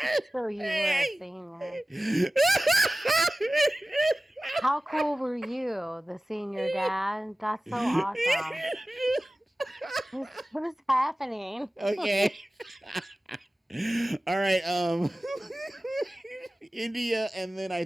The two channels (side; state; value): both; normal; correlation 0.96